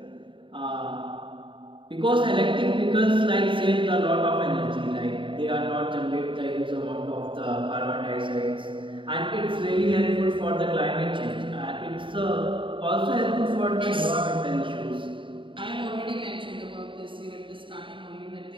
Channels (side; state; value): left; late; 0.25 ms